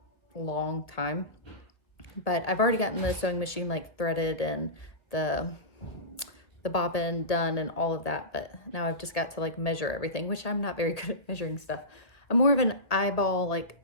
long time, but I've already gotten the sewing machine like threaded and the bobbin done and all of that. But now I've just got to like measure everything, which I'm not very good at measuring stuff. I'm more of an eyeball, like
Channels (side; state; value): right; late; 1.4 ms